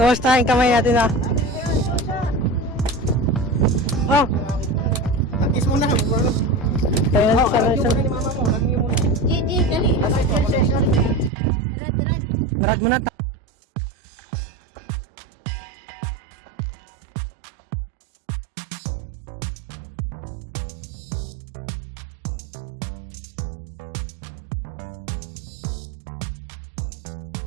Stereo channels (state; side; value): drops out; left; at 11.3 s